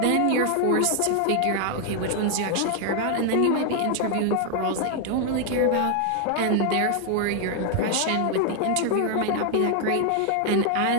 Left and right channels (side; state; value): both; different; correlation 0.00